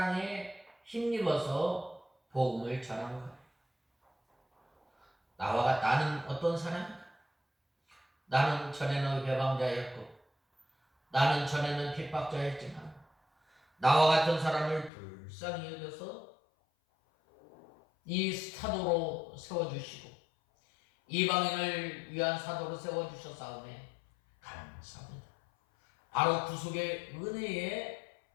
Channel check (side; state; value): right; drops out; at 14.9 s